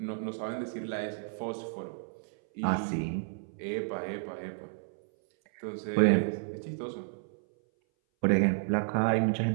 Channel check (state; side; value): silent; left; 57 dB below the other